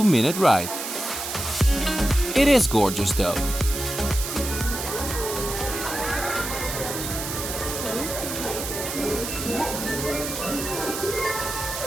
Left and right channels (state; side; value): noise; right; hiss, 5 dB below the sound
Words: ride. It is gorgeous though.